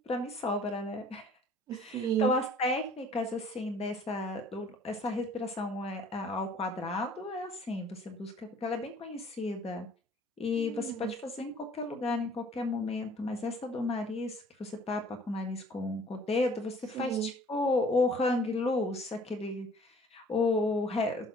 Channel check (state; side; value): normal; both; correlation 0.54